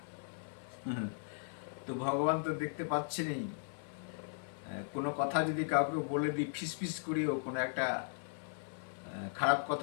তো ভগবান তো দেখতে পাচ্ছেনই। কোনো কথা যদি কাউকে বলে দিই, ফিসফিস করিও কোনো একটা খারাপ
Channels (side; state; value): right; silent; 53 dB below the other